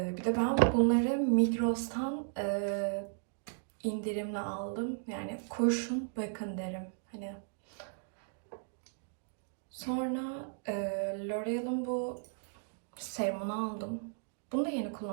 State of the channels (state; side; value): silent; left; digital silence